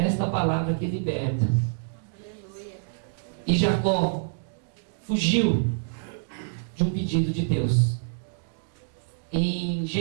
palavra que liberta. Aleluia. E Jacó fugiu de um pedido de Deus. Em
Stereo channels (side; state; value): left; silent; digital silence